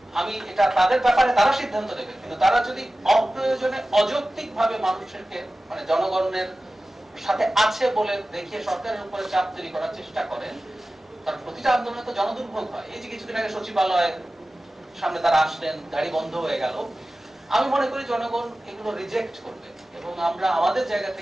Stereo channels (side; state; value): both; normal; correlation 0.96